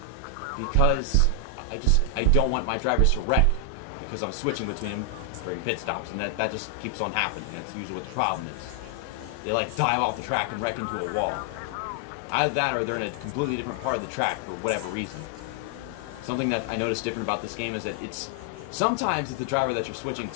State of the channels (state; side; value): different; both; correlation 0.00